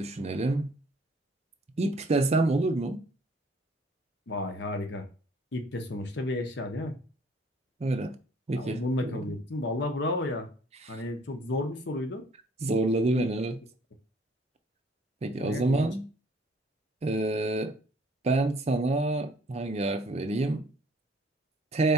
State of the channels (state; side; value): normal; both; correlation 0.58